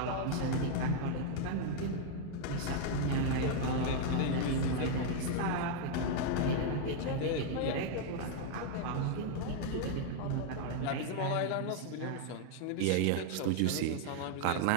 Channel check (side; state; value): both; different; correlation -0.01